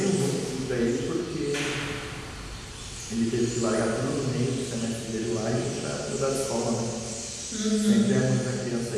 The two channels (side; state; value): both; identical; correlation 1.00